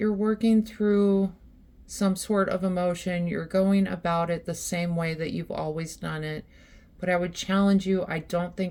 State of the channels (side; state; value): both; identical; correlation 1.00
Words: working through some sort of emotion. You're going about it the same way that you've always done it. But I would challenge you, I don't